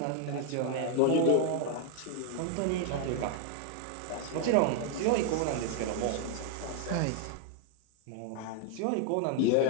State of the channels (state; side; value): different; both; correlation 0.00